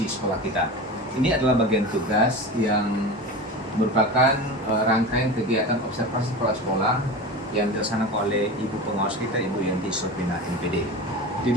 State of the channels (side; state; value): both; normal; correlation 0.29